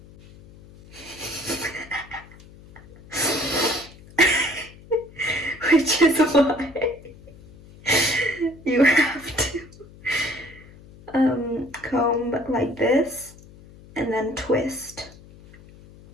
which is why you have to comb like this and then twist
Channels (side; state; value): left; noise; hum, 21 dB below the sound